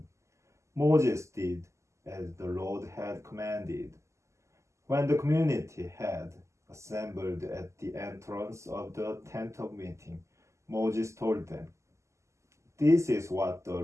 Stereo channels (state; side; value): late; left; 0.14 ms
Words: Moses did as the Lord had commanded. When the community had assembled at the entrance of the tent of meeting, Moses told them, "This is what the